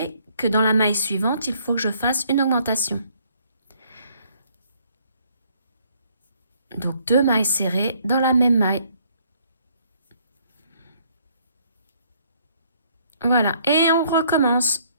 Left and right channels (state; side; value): inverted; both; correlation -0.64